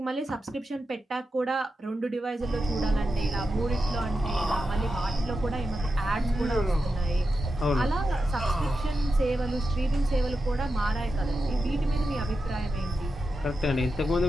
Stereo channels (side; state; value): both; normal; correlation 0.89